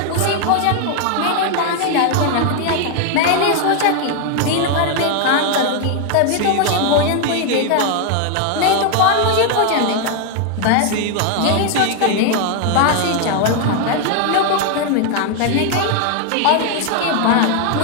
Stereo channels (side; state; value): both; different; correlation 0.00